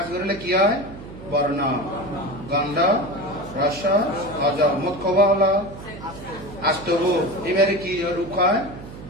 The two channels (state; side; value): noise; right; hum, 14 dB below the sound